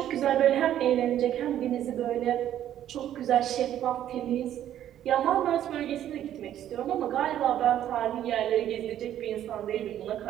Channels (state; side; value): quieter; left; 11.3 dB